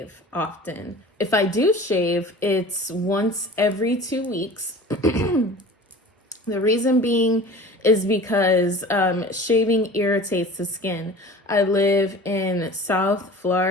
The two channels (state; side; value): normal; both; correlation 0.40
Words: often. If I do shave, it's once every 2 weeks. The reason being is because shaving irritates the skin. I live in South